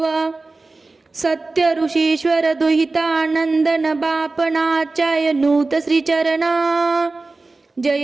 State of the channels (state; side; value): quieter; left; 3.5 dB